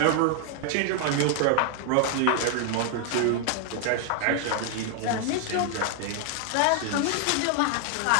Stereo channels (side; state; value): both; different; correlation 0.00